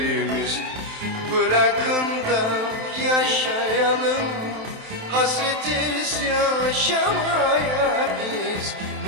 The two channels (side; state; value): left; late; 27 ms